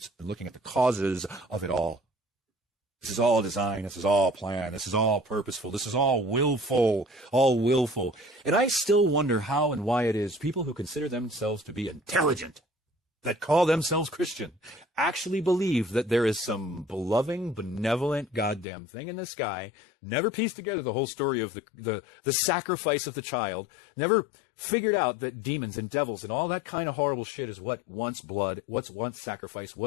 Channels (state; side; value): drops out; right; at 18.7 s